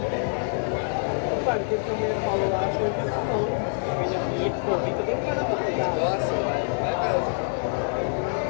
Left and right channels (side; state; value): right; silent; digital silence